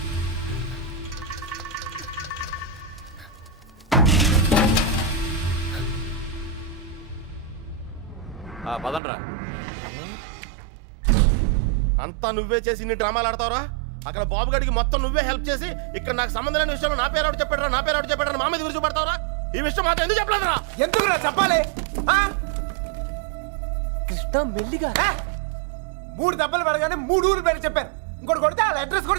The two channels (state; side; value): drops out; left; at 9.0 s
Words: పదండ్రా. అంతా నువ్వే చేసి ఇన్ని డ్రామాలు ఆడతావురా? అక్కడ బాబు గడికి మొత్తం నువ్వే హెల్ప్ చేసి ఇక్కడ నాకు సంబంధం లేని విషయంలో నా పేరు చెప్పాడు మా మీద గురించి పడతావురా? ఈ విషయం మాత్రం ఎందుకు చెప్పలేదురా? ఎందుకురా చెప్పాలి? కృష్ణ మెల్లిగా. 3 దెబ్బలు పడగానే 3 ఊరు పేరు చెప్పారు. ఇంకోటి కొడితే వాళ్ళ అడ్రస్